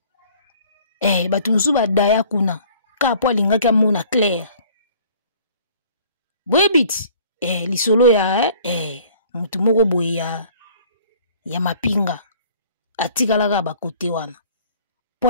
Batu mususu ba daya kuna ka po alingaki amona clair. Bwebit lisolo ya mutu moko boye ya mapinga atikalaka bakote wana po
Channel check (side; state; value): both; inverted; correlation -0.53